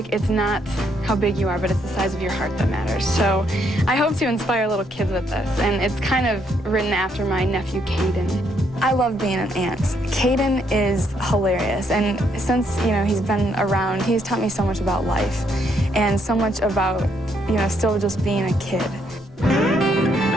it's not how big you are, but it's the size of your heart that matters. So I hope to inspire little kids with this, and it's kind of written after my nephew, Caden. I love being an aunt. Caden is hilarious, and since, you know, he's been around, he's taught me so much about life and so much about, you know, still just being a kid.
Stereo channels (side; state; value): both; normal; correlation 0.73